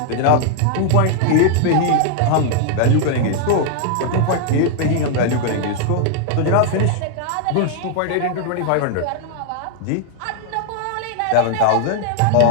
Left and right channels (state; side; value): different; both; correlation 0.00